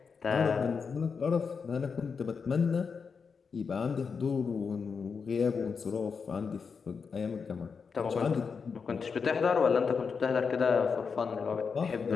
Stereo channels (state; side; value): quieter; right; 5.6 dB